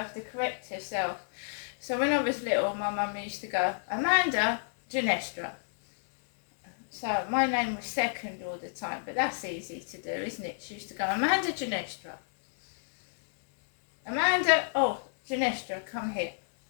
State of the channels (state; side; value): silent; right; digital silence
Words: to correct herself. So when I was little, my mum used to go, "Amanda Ginestra." So my name was second all the time, but that's easy to do, isn't it? She used to go, "Amanda Ginestra. Amanda, Ginestra, come here."